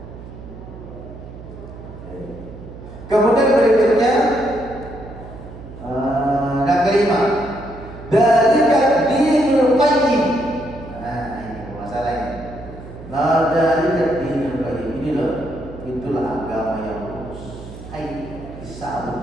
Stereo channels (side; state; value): right; noise; hum, 14 dB below the sound